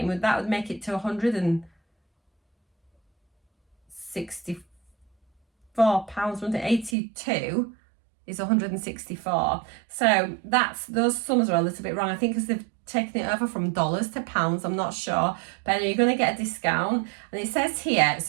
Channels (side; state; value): left; drops out; at 7.0 s